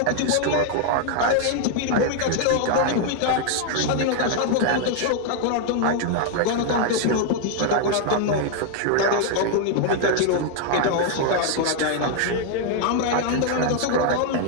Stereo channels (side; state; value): both; different; correlation 0.00